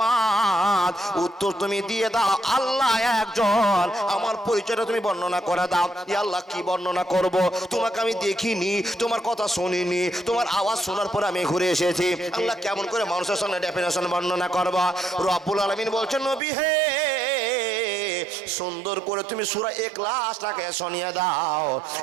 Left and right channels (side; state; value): left; drops out; at 16.4 s